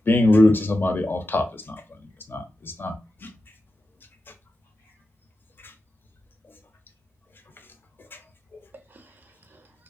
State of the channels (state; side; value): normal; both; correlation 0.91